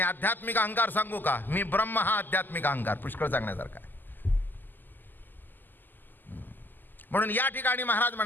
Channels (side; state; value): right; late; 0.089 ms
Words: आध्यात्मिक अहंकार सांगू का, मी ब्रह्म, हा आध्यात्मिक अहंकार पुष्कळ सांगण्यासारखा आहे. म्हणून या ठिकाणी महाराज